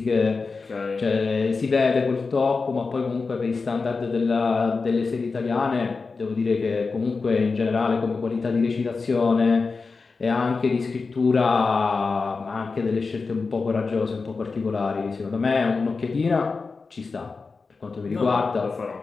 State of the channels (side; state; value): right; quieter; 4.4 dB